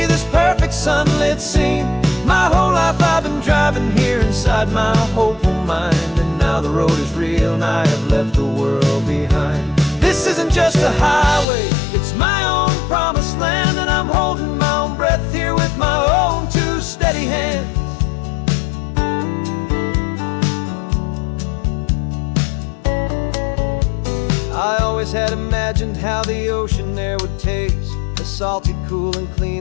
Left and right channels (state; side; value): drops out; right; at 11.5 s